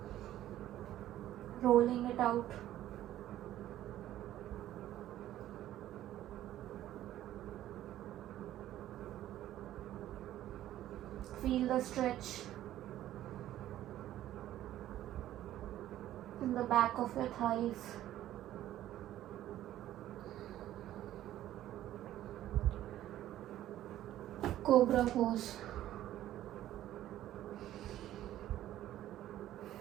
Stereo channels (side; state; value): left; quieter; 13.2 dB